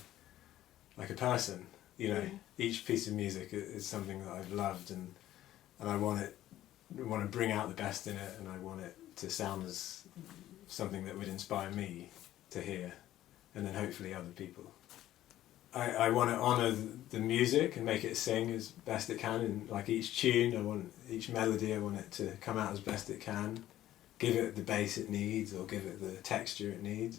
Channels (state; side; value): quieter; right; 13.6 dB